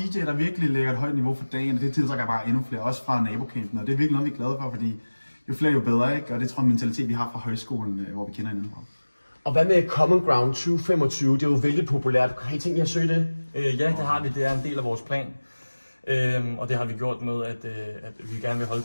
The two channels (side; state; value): both; inverted; correlation -1.00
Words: der virkelig lægger et højt niveau for dagen, og det tiltrækker bare endnu flere, også fra nabocampen. Og det er virkelig noget, vi er glade for, fordi jo flere, jo bedre, ikke? Og det tror jeg er en mentalitet, vi har fra højskolen, hvor vi kender hinanden fra. Og hvad med Common Ground 2025? Det er jo vældig populært. Har I tænkt jer at søge det? Ja, det har vi. Det er en del af vores plan. Og det har vi gjort med, at vi gerne vil holde